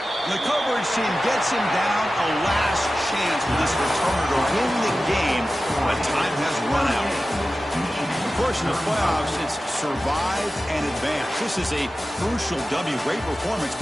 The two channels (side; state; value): both; normal; correlation 0.95